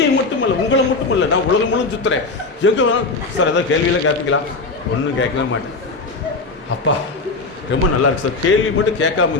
மட்டுமல்ல, உங்களை மட்டுமல்ல, நான் உலகம் முழுவதும் சுற்றுறேன். எங்கே வேணும் சார் ஏதாவது கேள்வியெல்லாம் கேட்பீங்களா? ஒன்றும் கேட்கவே மாட்டேன். அப்பா ரொம்ப நல்லா இருக்கு சார். கேள்வி மட்டும் கேட்காம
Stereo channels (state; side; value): quieter; right; 3.7 dB